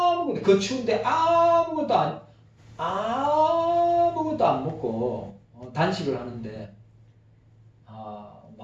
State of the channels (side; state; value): both; identical; correlation 1.00